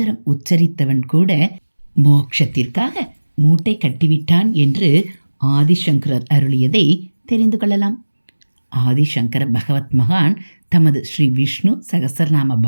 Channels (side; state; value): both; inverted; correlation -1.00